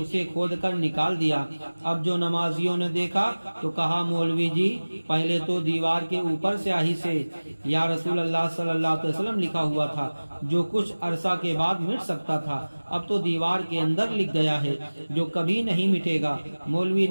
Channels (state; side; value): inverted; both; correlation -1.00